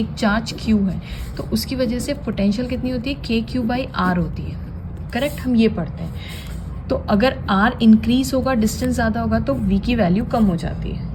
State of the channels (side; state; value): both; identical; correlation 1.00